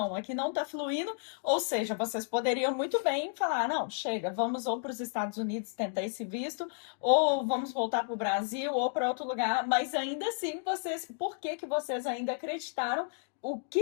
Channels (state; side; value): silent; right; digital silence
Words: aqui não tá fluindo. Ou seja, vocês poderiam muito bem falar, não, chega, vamos ou para os Estados Unidos tentar esse visto, ou vamos voltar para o Brasil, ou para outro lugar. Mas ainda assim, por que vocês ainda acreditaram o que